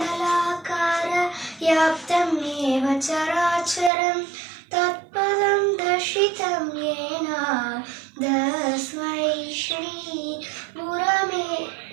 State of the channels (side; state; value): left; drops out; at 3.9 s